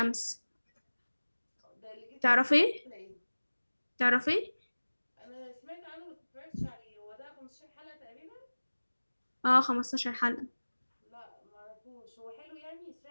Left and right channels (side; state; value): both; inverted; correlation -1.00